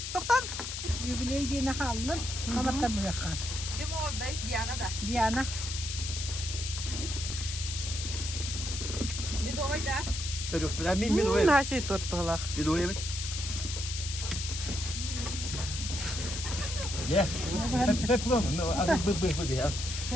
Doktan. Jubileyi diye ne halın? Sabahtan bu yakar. Kim oradayız? Diana da. Diana. Bir de oyda. Yok, ben mi doyayım? Her şey tort balak. Bir doyayım. Ya. Hep bu mu? Artık bu ya.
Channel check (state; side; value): noise; left; hiss, 5 dB below the sound